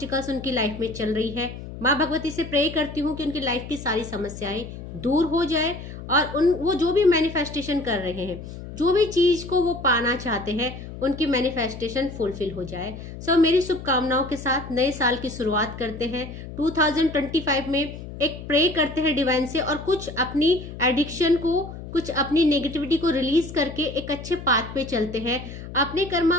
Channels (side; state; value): left; noise; hum, 11 dB below the sound